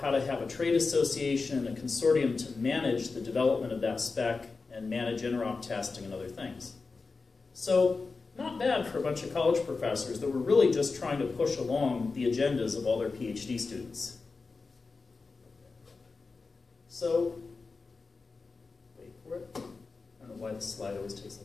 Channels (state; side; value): quieter; right; 4.2 dB